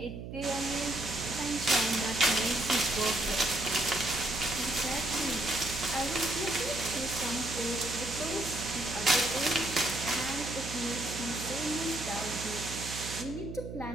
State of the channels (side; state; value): right; noise; hum, 9 dB below the sound